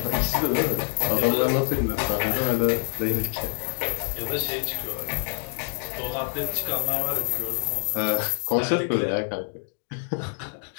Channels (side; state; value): right; silent; digital silence